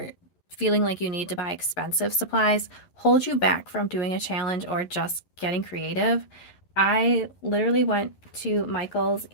feeling like you need to buy expensive supplies hold you back from doing a challenge or just getting creative. I literally went to Michael's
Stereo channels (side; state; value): right; late; 11 ms